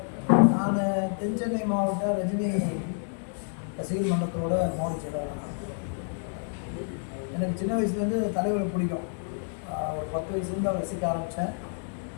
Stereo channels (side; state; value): right; silent; 59 dB below the other